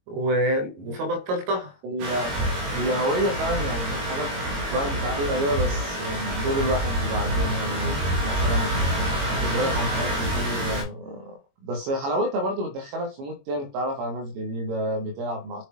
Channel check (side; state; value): left; late; 22 ms